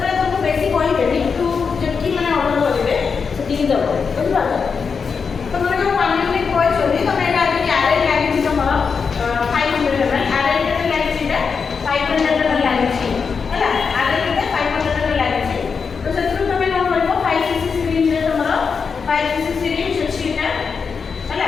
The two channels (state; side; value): quieter; right; 5.6 dB